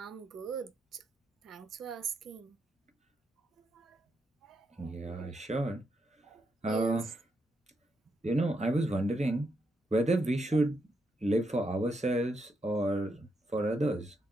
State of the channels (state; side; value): normal; both; correlation 0.81